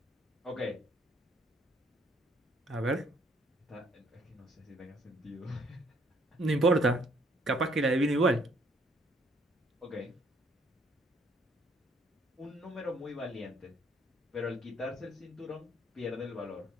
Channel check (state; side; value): normal; both; correlation 0.64